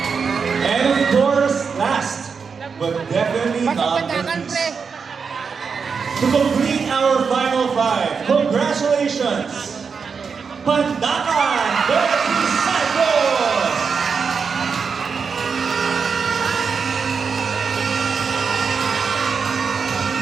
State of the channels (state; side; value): quieter; left; 5.7 dB